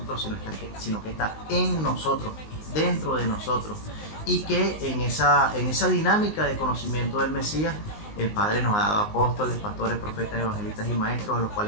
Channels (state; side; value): late; right; 19 ms